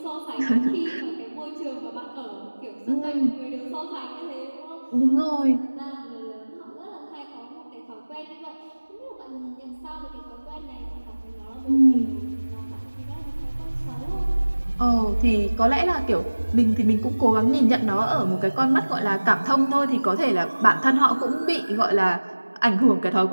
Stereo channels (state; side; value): inverted; both; correlation -1.00